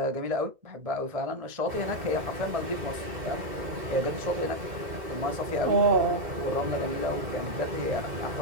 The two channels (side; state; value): left; late; 2.1 ms